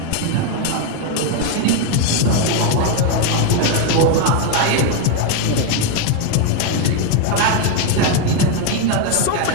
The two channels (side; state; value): both; different; correlation 0.01